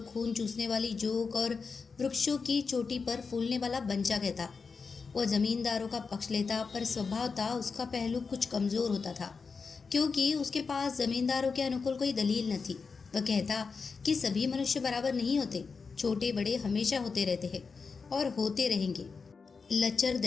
खून चूसने वाली जोक और वृक्षों की चोटी पर फूलने वाला बंचा कहता। वो जमींदारों का पक्ष लेता, पर स्वभावतः उसका पहलू कुछ कमजोर होता था, क्योंकि उसके पास जमींदारों के अनुकूल कोई दलील न थी। वह कहता कि सभी मनुष्य बराबर नहीं होते, छोटे बड़े हमेशा होते रहते हैं और होते रहेंगे। लचर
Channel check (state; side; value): quieter; right; 5.0 dB